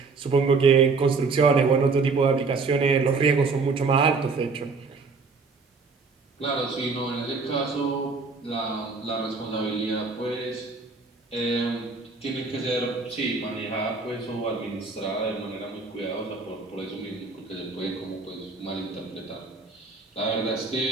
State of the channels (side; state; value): left; quieter; 4.4 dB